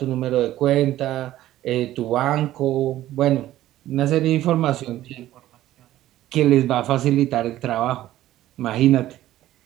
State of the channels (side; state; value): left; quieter; 14.1 dB